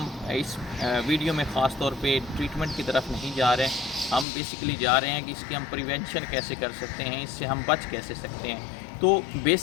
इस वीडियो में ख़ास तौर पे ट्रीटमेंट की तरफ नहीं जा रहे हैं। हम बेसिकली जा रहे हैं कि इसकी हम प्रिवेंशन कैसे कर सकते हैं, इससे हम बच कैसे सकते हैं। तो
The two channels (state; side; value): drops out; right; at 4.2 s